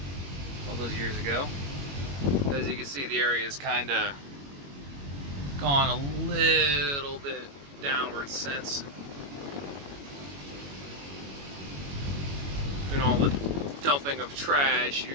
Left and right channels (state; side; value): late; left; 21 ms